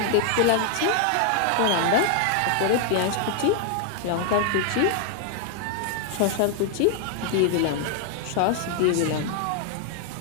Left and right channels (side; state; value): both; different; correlation 0.00